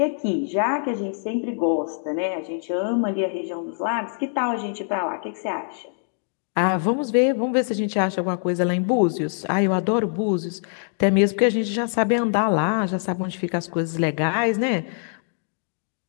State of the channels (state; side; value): silent; right; digital silence